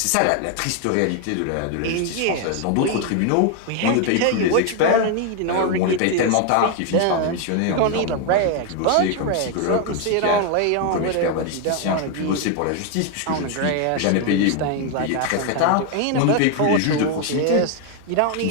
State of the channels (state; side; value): different; both; correlation 0.01